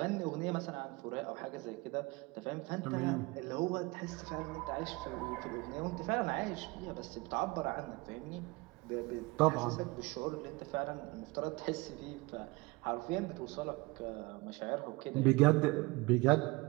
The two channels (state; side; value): quieter; left; 24.1 dB